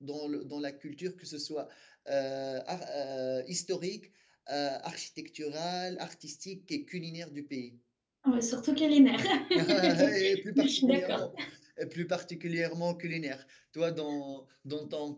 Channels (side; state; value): both; identical; correlation 1.00